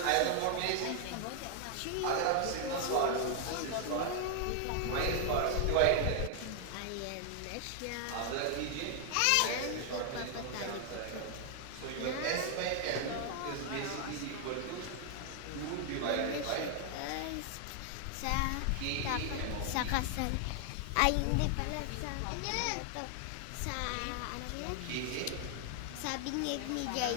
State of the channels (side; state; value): both; different; correlation 0.00